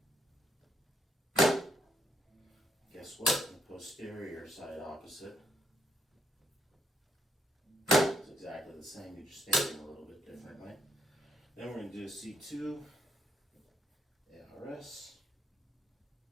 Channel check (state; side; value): normal; both; correlation 0.72